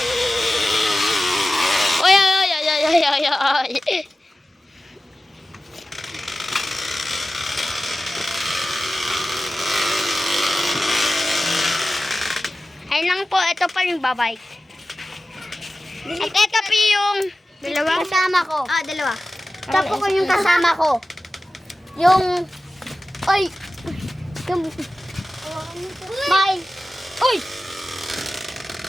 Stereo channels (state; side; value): normal; both; correlation 0.95